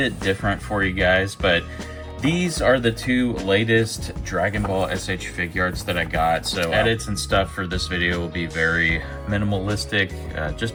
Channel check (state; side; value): identical; both; correlation 1.00